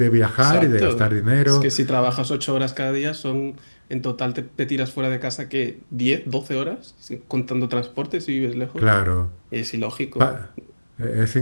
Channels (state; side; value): inverted; both; correlation -1.00